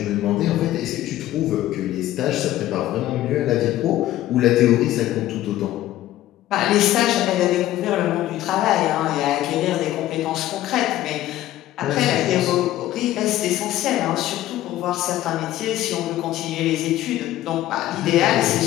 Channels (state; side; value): quieter; right; 14.3 dB